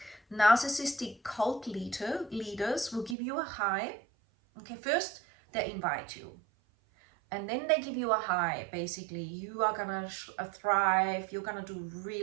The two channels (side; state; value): left; drops out; at 3.2 s